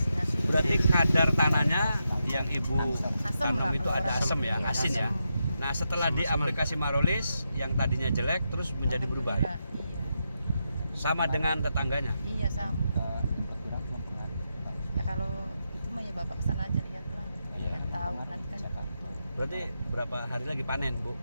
asin-asin. Berarti kadar tanahnya yang Ibu Asam tanam lah, itu kalau ada asam ya, Iya, asin ya. Nah, setelah di aplikasi Marolis yang tadinya jelek terus menjadi berubah. Alhamdulillah, Iya. Sama dengan tetangganya. Iya sama. Ya kalau itu mah ya Bapak kesana aja lihat lah. Iya. Yang tahu nanti kan foto. Berarti berapa hari lagi panen, Bu?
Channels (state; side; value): inverted; both; correlation -0.85